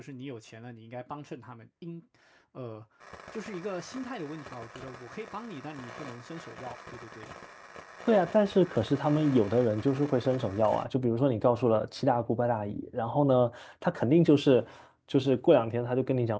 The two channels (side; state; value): both; identical; correlation 1.00